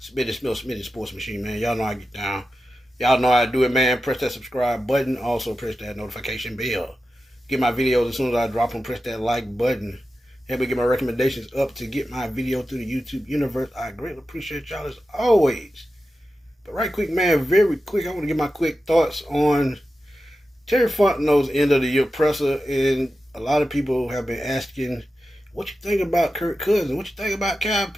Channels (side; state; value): both; normal; correlation 0.92